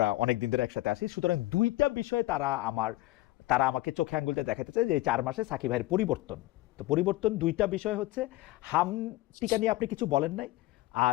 অনেক দিন ধরে একসাথে আসি, সুতরাং দুইটা বিষয়ে তারা আমাকে চোখে আঙ্গুলটা দেখাতে চায় যে এই 4 মাসে সাকিব ভাইয়ের পরিবর্তন। তো পরিবর্তন দুইটা বিষয় হচ্ছে, হাম টিকা নিয়ে আপনি কিছু বলেন নাই,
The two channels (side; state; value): right; quieter; 18.1 dB